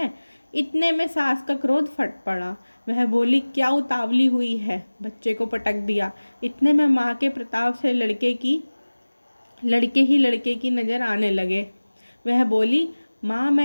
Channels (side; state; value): both; inverted; correlation -1.00